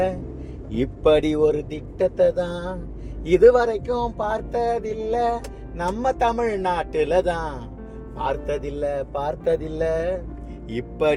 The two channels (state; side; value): identical; both; correlation 1.00